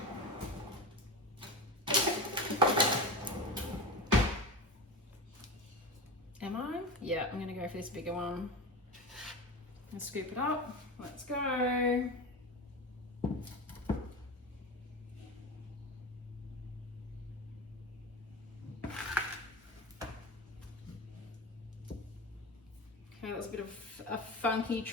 Am I? Yeah, I'm going to go for this bigger one. And scoop it up. Let's go. Okay, that's a bit of a funky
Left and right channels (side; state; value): both; normal; correlation 0.25